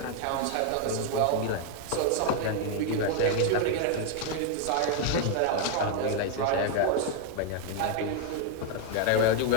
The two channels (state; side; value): different; both; correlation 0.00